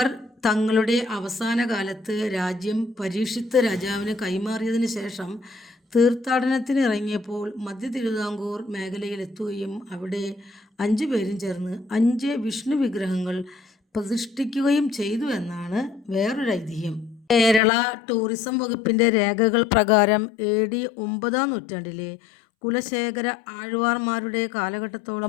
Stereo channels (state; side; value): drops out; right; at 17.6 s